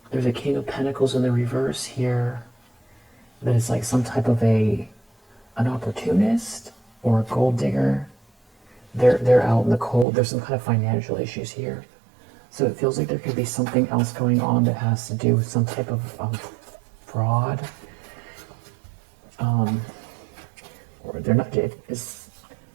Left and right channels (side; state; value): left; drops out; at 10.1 s